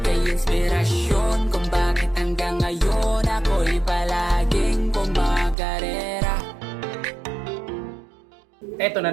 inspirasyon kung bakit hanggang ngayon ako'y palaging kumakarera. Eto na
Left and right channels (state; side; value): drops out; left; at 5.6 s